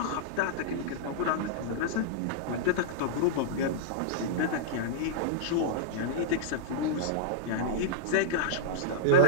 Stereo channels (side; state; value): both; different; correlation -0.02